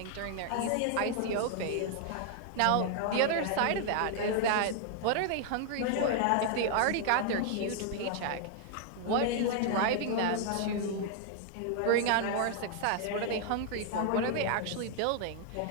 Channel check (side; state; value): both; different; correlation 0.00